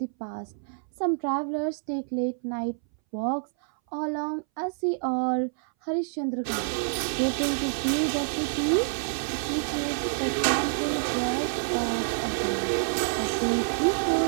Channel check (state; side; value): silent; left; 60 dB below the other